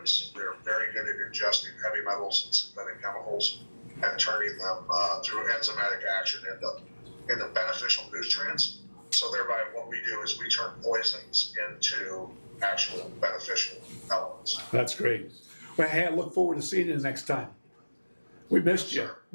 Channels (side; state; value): both; inverted; correlation -1.00